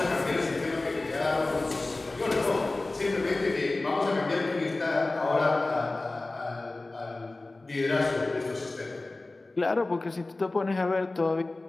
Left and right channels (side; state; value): right; quieter; 3.1 dB